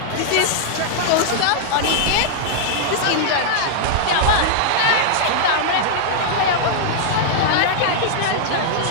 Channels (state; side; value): different; both; correlation -0.01